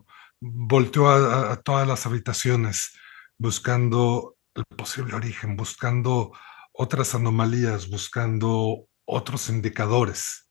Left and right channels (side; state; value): right; quieter; 17.3 dB